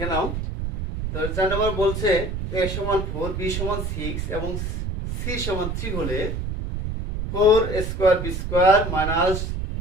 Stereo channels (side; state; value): right; noise; rumble, 4 dB below the sound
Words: নাও। তো 4 নম্বর বলছে a সমান 4 b সমান 6 এবং c সমান 3 হলে 4 square b square minus